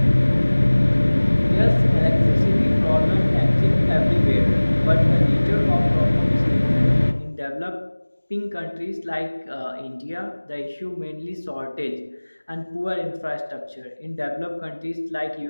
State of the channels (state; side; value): inverted; both; correlation -1.00